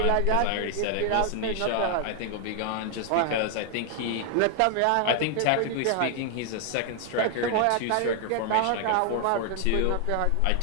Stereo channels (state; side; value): different; both; correlation 0.00